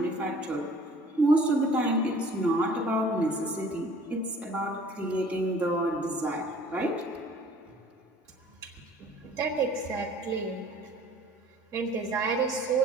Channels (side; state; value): both; normal; correlation 0.51